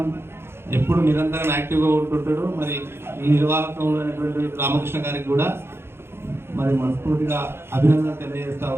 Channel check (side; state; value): left; late; 0.12 ms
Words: ఎప్పుడు నిరంతరం యాక్టివ్గా ఉంటుంటాడు. మరి ఈ నిర్వాహకంలో అయినటువంటి రామకృష్ణ గారికి కూడా మరి మనస్ఫూర్తిగా అభినందన తెలియజేస్తా